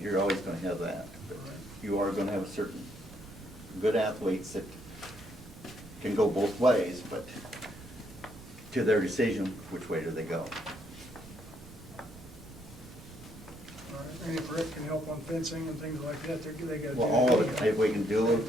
always gonna have that. But you are gonna have a certain good athletes that can go both ways, but to their decision, which way do they go? All right, and if Rick can help on fencing and things like that, they got to do. Well, all of it, if we can do it,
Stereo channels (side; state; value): right; noise; rumble, 18 dB below the sound